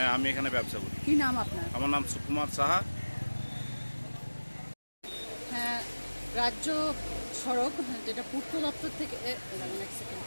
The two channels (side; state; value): both; inverted; correlation -1.00